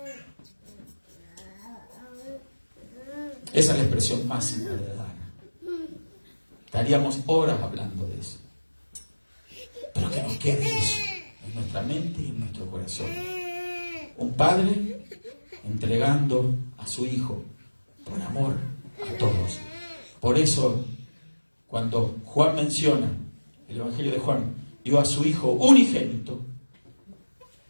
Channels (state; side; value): inverted; both; correlation -1.00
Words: Esa es la expresión máxima de dar. Estaríamos horas hablando de eso. Pero que nos quede eso en nuestra mente y en nuestro corazón. Un padre entregando a su Hijo por amor a todos. Por eso, cuando Juan menciona, el Evangelio de Juan, dio a su Hijo unigénito,